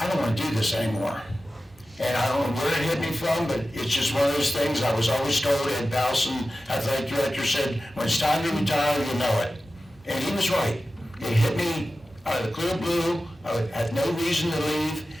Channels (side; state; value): both; normal; correlation 0.94